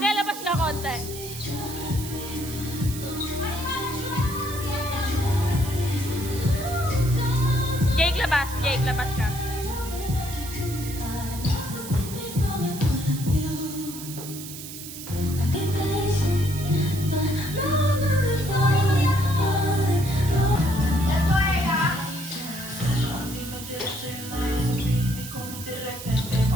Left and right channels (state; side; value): noise; right; hiss, 11 dB below the sound